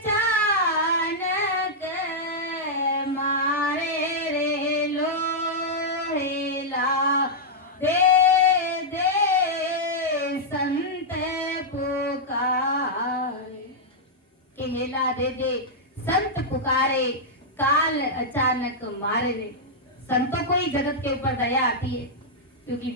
मारे रे लोहेला दे दे संत पुकारे, केला दे दे संत पुकारे, काल अचानक मारे रे। संतों को ही जगत के ऊपर दया आती है, क्योंकि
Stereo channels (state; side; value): normal; both; correlation -0.07